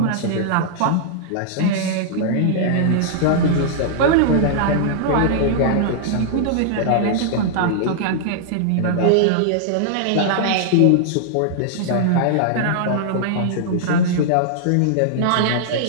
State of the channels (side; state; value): both; different; correlation -0.01